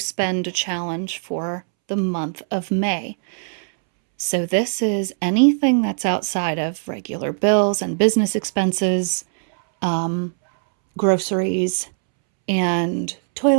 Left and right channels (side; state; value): left; silent; 65 dB below the other